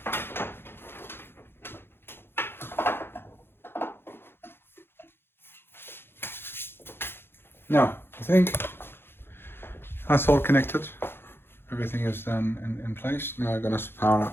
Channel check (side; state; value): right; late; 0.11 ms